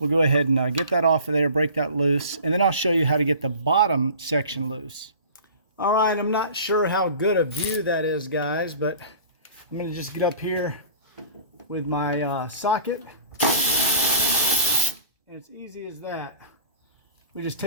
go ahead and get that off of there, break that loose. And then I'll show you how to get the bottom section loose. All right, I'm not sure how good a view that is, guys, but I'm going to just get up here with my socket. And it's easy as that. We just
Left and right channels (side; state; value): both; inverted; correlation -0.43